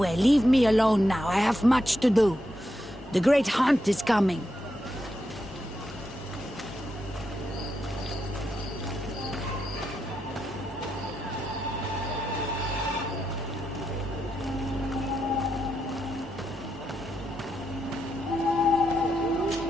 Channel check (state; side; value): normal; both; correlation 0.84